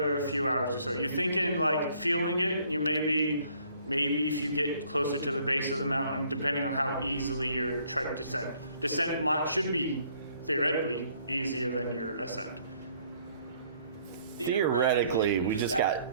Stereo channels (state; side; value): inverted; both; correlation -0.63